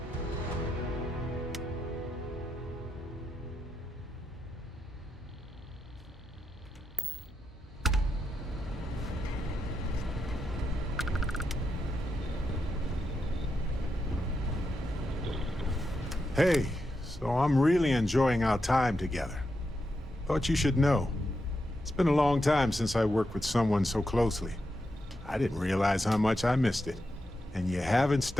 Hey, so I'm really enjoying our time together. Thought you should know. It's been a long time since I worked with someone so closely. I didn't realize how much I missed it. And you haven't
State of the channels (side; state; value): both; normal; correlation 0.85